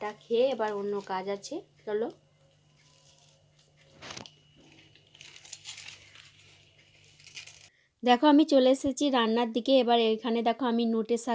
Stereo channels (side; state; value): both; identical; correlation 1.00